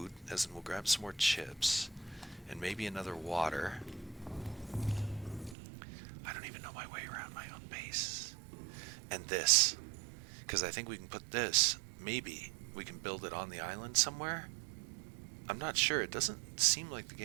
as in we'll grab some more chips, and maybe another water. I don't even know my way around my own base. And this, because I think we can put this, maybe we can build it on the island somewhere. I'm not sure. It doesn't seem like the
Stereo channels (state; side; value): drops out; left; at 5.6 s